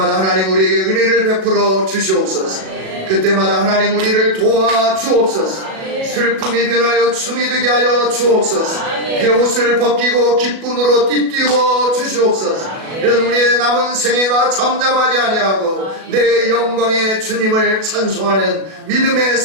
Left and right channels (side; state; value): left; late; 37 ms